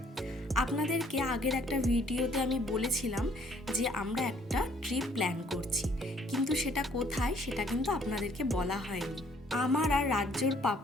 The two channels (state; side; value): normal; both; correlation 0.62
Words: আপনাদেরকে আগের একটা ভিডিওতে আমি বলেছিলাম যে আমরা একটা ট্রিপ প্ল্যান করছি, কিন্তু সেটা কোথায় সেটা কিন্তু আপনাদেরকে বলা হয়নি। আমার আর রাজ্যর